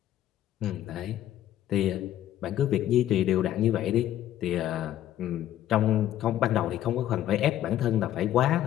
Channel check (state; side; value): quieter; right; 12.3 dB